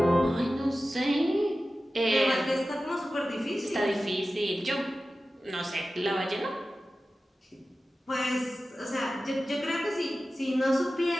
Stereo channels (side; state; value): both; normal; correlation 0.95